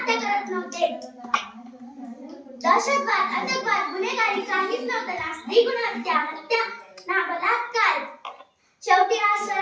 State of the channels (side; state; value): both; identical; correlation 1.00